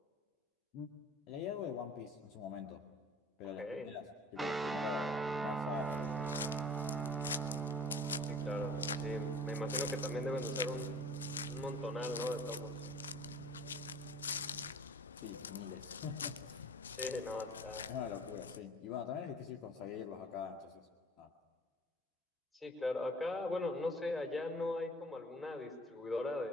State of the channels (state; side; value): normal; both; correlation 0.47